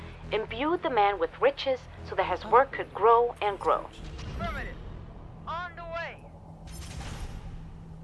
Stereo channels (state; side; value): identical; both; correlation 1.00